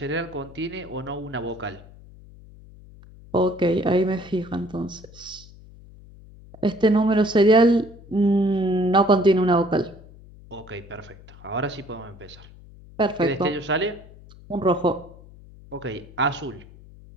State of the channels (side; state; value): left; noise; hum, 21 dB below the sound